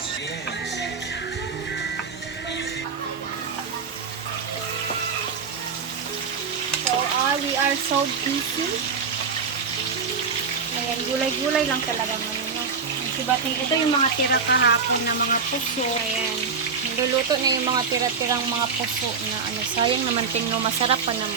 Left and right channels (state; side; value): quieter; left; 5.6 dB